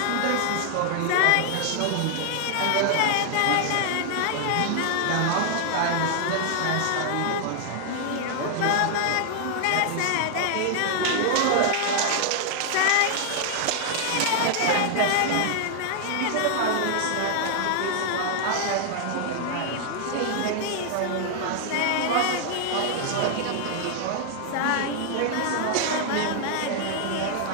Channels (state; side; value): different; both; correlation 0.00